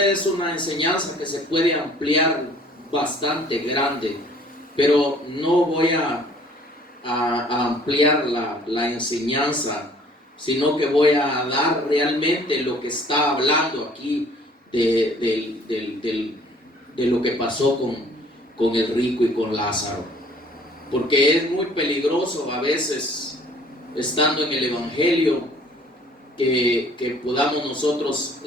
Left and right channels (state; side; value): normal; both; correlation 0.55